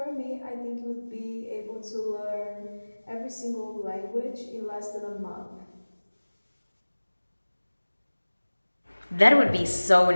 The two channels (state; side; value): inverted; both; correlation -1.00